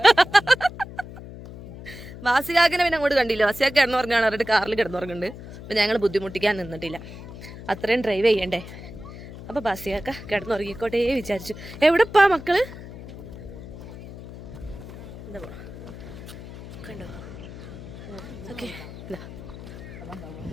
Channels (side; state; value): left; noise; hum, 13 dB below the sound